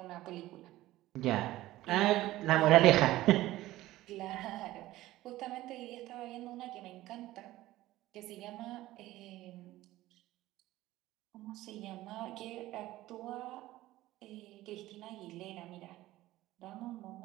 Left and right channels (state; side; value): quieter; left; 16.3 dB